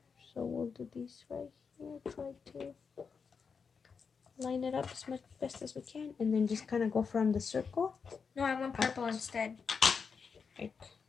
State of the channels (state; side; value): quieter; right; 5.7 dB